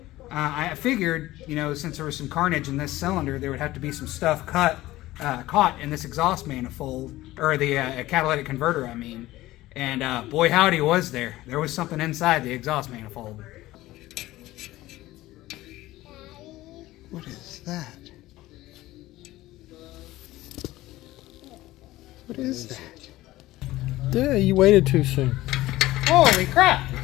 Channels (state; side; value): quieter; right; 17.0 dB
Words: I figured, you know, since there was some carnage in this cylinder, there would have to be some stuff caught in this exhaust manifold, or the catalytic converter, I mean. And boy howdy was there. There was something inside the exhaust manifold. What is that? What is that? Yeah, you waited too soon. Holy crap!